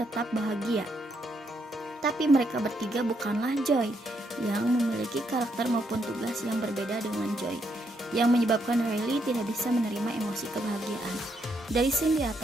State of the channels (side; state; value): both; normal; correlation 0.76